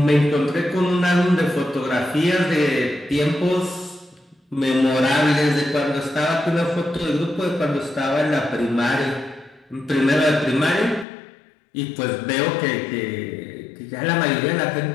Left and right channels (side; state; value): right; drops out; at 11.1 s